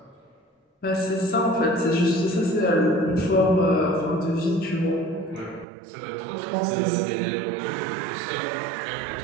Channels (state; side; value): drops out; left; at 5.7 s